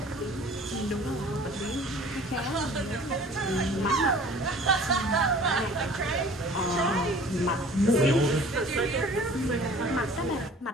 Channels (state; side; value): normal; both; correlation 0.47